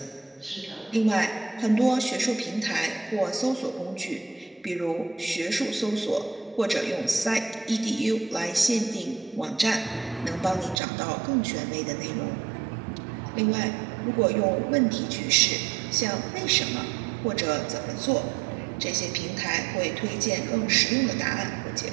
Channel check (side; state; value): left; drops out; at 10.8 s